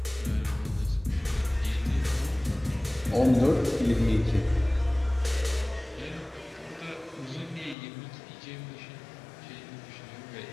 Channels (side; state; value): right; drops out; at 7.8 s